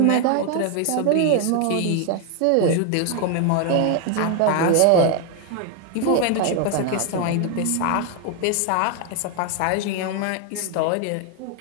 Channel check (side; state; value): both; different; correlation 0.01